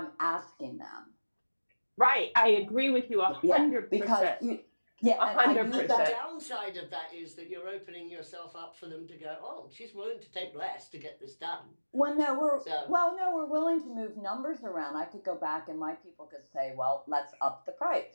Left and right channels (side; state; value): both; inverted; correlation -1.00